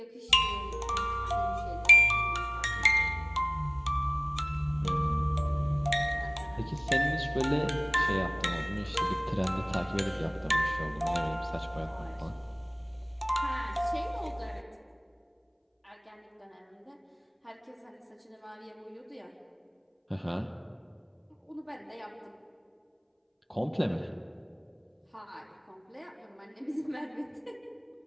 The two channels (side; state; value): both; identical; correlation 1.00